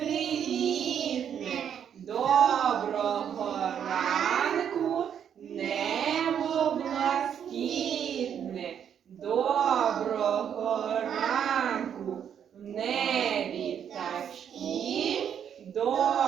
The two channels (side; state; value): left; quieter; 8.6 dB